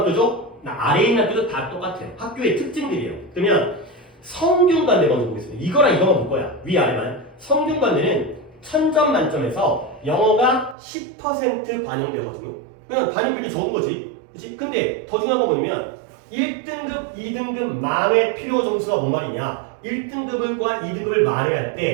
아래에 있는 학교도 다 똑같아요. 학교의 특징들이에요. 그러면 성균관대 먼저 보겠습니다. 이거랑 이거만 볼 거야. 위아래만. 성균관대는 1000점 만점에서 영어가 10% 반영되거든요. 그냥 반영비율이 적은 거지. 그치? 근데 더 중요한 건 뭐냐면 1등급, 2등급 만회 필요 점수가 뭔 말이냐. 1등급과 2등급을 만회할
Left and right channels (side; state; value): left; drops out; at 10.8 s